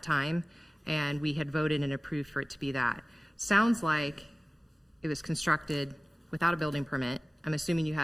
time, and we had voted and approved for it to be that. Sounds like it was constructed without a building permit. I'm assuming you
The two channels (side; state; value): both; normal; correlation 0.97